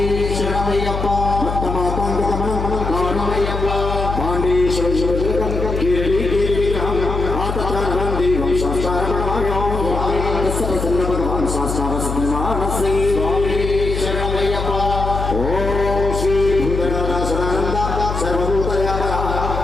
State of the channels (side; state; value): left; noise; hum, 4 dB below the sound